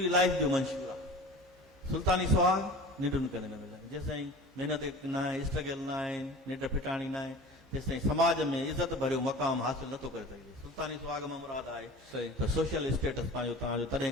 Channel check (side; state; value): both; normal; correlation 0.38